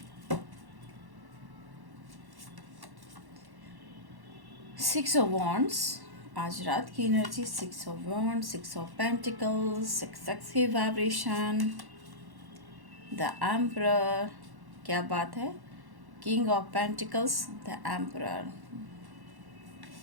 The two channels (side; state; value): left; late; 1.1 ms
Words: six of wands. आज रात की energy six of wands, six of pentacles, success की वाइब्रेशन, द एम्परर, क्या बात है, king of pentacles, the emperor,